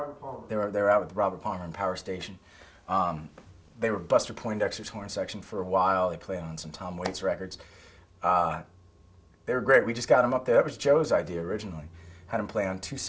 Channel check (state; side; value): identical; both; correlation 1.00